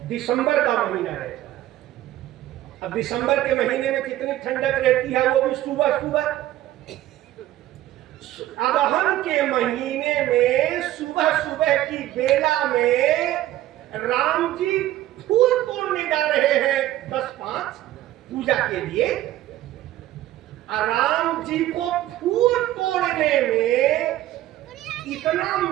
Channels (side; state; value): left; quieter; 14.4 dB